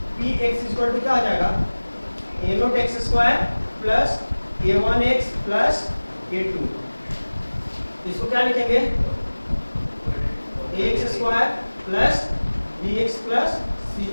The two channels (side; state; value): both; inverted; correlation -1.00